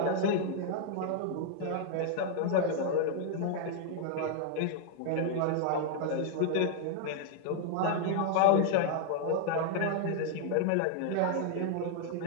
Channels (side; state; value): both; different; correlation 0.00